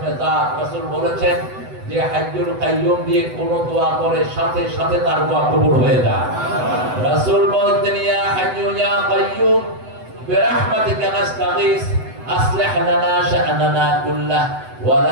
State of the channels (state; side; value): late; left; 7.9 ms